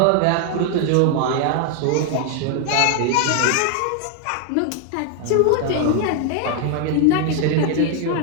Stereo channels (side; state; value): both; different; correlation 0.00